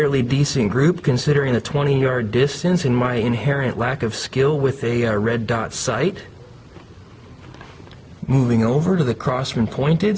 decent group considering the 20-yard distance and my inherent lack of skill with a red dot sight. Moving over to the Crosman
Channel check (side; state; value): both; identical; correlation 1.00